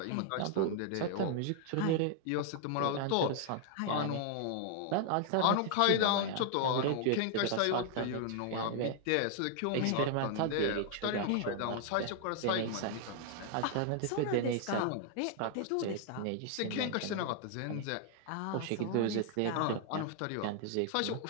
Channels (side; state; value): both; different; correlation 0.00